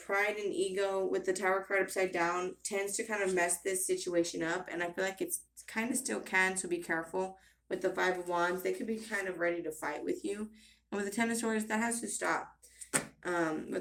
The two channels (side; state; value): both; identical; correlation 1.00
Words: and ego with the Tower card upside down tends to kind of mess this situation up, and I feel like it's kind of still can, so be careful. With the Five of Wands, they could be kind of ready to fight with you, and with the Ten of Swords, that has to stop.